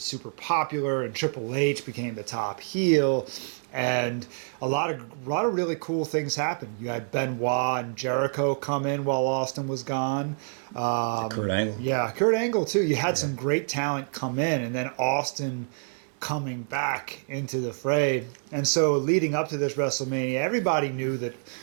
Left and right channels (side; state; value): left; silent; digital silence